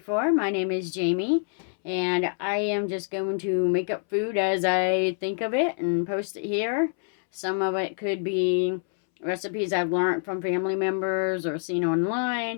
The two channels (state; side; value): silent; right; 61 dB below the other